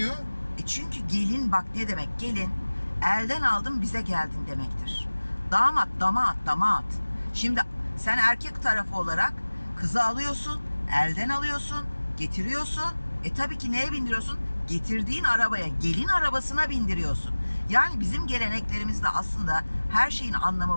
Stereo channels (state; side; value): inverted; both; correlation -1.00